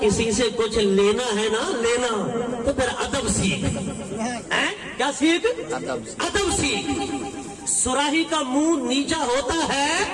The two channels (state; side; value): identical; both; correlation 1.00